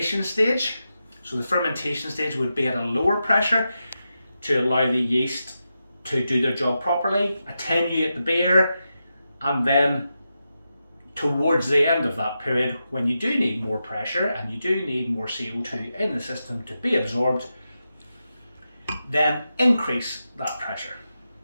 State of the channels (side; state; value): both; inverted; correlation -0.89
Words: stage. So the fermentation stage would be at a lower pressure to allow the yeast to do their job properly, attenuate the beer, and then towards the end of that period, when you do need more pressure and you do need more CO2 in the system to be absorbed, then increase that pressure